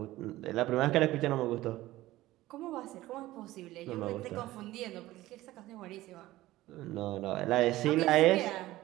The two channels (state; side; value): quieter; left; 16.7 dB